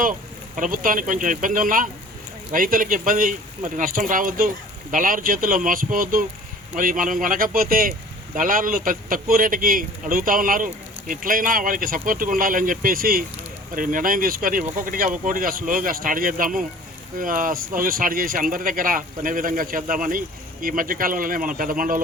ప్రభుత్వానికి కొంచెం ఇబ్బంది ఉన్నా రైతులకు ఇబ్బంది మరి నష్టం రావద్దు, దళారు చేతుల్లో మోసపోవద్దు. మరి మనం కొనకపోతే దళారులు తక్కువ రేటుకి అడుగుతూ ఉన్నారు, ఎట్లయినా వాళ్ళకి సపోర్ట్గా ఉండాలని చెప్పేసి మరి నిర్ణయం తీసుకొని ఒక్కొక్కటిగా స్లోగా స్టార్ట్ చేద్దాము, స్టార్ట్ చేసి అందరి దగ్గర కొనే విధంగా చేద్దామని ఈ మధ్యకాలంలోనే మనం పెద్ద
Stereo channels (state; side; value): normal; both; correlation 0.46